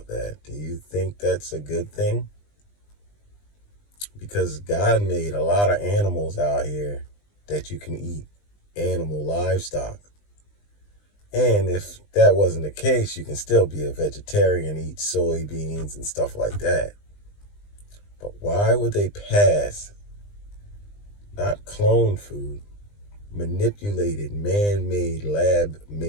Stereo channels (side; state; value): right; late; 20 ms